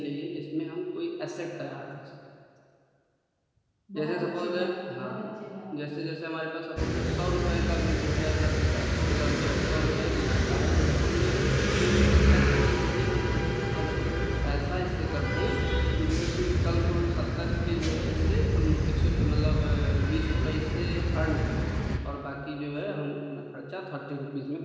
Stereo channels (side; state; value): both; identical; correlation 1.00